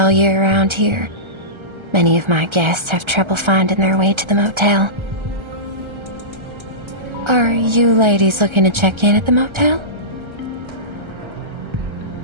year around here. Many of my guests have trouble finding their way to the motel. Are you ladies looking to check in at the motel?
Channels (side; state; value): left; late; 1.3 ms